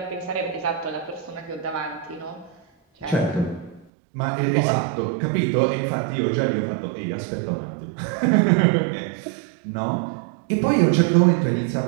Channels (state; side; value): drops out; left; at 3.9 s